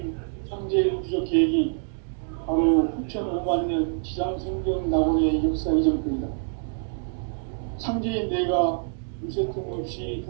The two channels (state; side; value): silent; left; digital silence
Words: 상제의 우주적 계획이 바로 후천 5만 년 지상성경 낙원의 역사 이전부이다. 상제인 내가 유세틈 없이